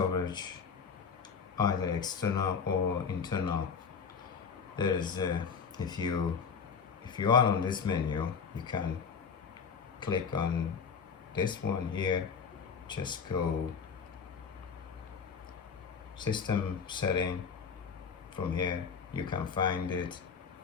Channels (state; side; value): quieter; right; 6.2 dB